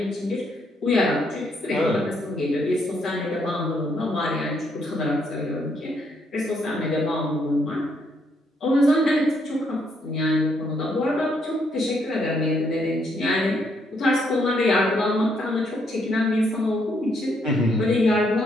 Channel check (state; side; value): normal; both; correlation 0.73